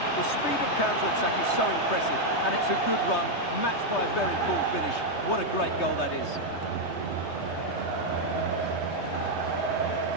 The speed of counter-attack is so impressive, and it's a good run, matched by a very cool finish. What a great goal that is.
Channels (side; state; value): right; late; 3.2 ms